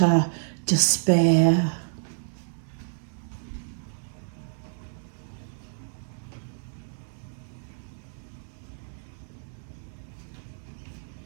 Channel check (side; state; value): left; silent; digital silence